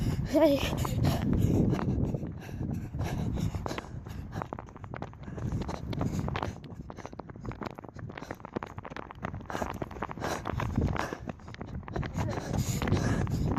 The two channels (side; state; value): both; identical; correlation 1.00